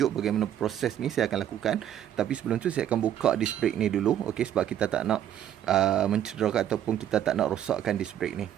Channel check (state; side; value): quieter; left; 10.7 dB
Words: bagaimana proses ni saya akan lakukan. Tapi sebelum tu saya akan buka disc brake ni dulu, okey, sebab kita tak nak mencederakan ataupun kita tak nak rosakkan disc brake ni.